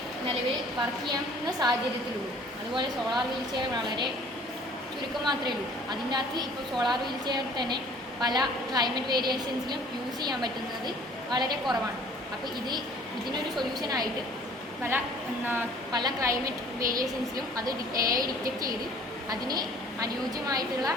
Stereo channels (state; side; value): normal; both; correlation 0.52